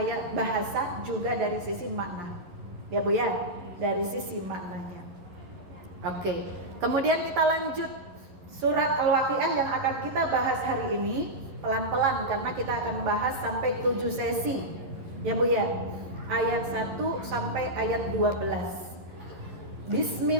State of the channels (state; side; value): late; left; 11 ms